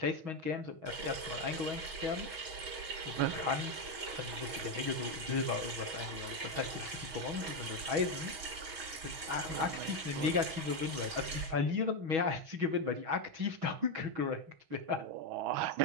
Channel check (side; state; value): left; late; 6.2 ms